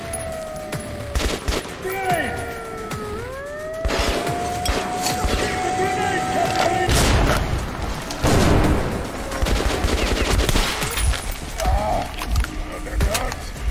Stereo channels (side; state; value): both; identical; correlation 1.00